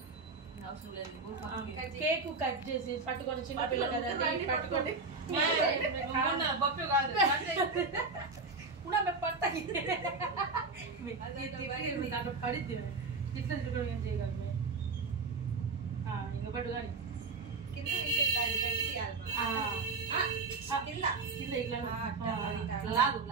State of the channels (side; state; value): left; quieter; 4.0 dB